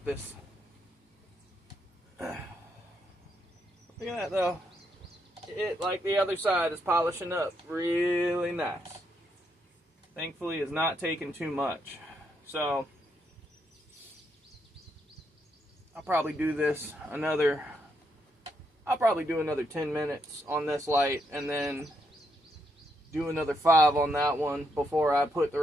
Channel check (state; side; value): normal; both; correlation 0.78